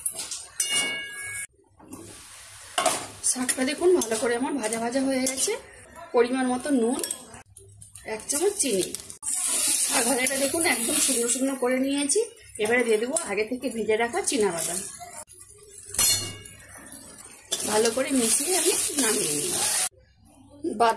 শাকটা দেখুন ভালো করে আমার ভাজা ভাজা হয়ে গেছে। পরিমাণ মতো নুন, 1 চামচ চিনি। শাক ভাজাটা দেখুন একদম শুকনো শুকনো করে নিয়েছি। এবারে দিয়ে দেবো আগে থেকে ভেজে রাখা চীনা বাদাম। ভালো করে মিশিয়ে আমি নামিয়ে নিই।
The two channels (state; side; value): identical; both; correlation 1.00